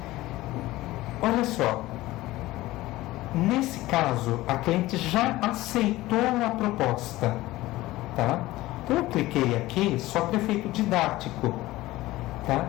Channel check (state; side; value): quieter; right; 17.7 dB